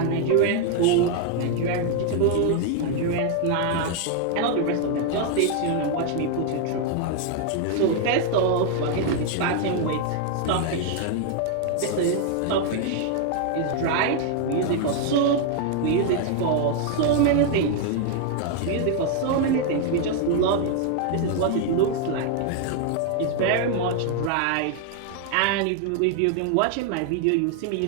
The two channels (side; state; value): both; different; correlation 0.00